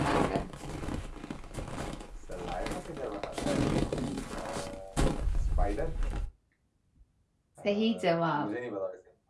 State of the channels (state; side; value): identical; both; correlation 1.00